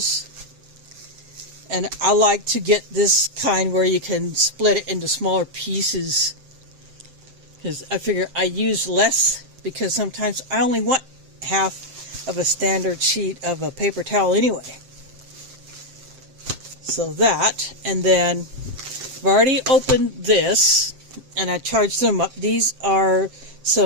And I like to get this kind where you can split it into smaller pieces, because I figure I use less, because sometimes I only want half of a standard sheet of a paper towel anyway. So that, and then I've already opened this and I charged them up. These are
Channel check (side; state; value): left; late; 7.7 ms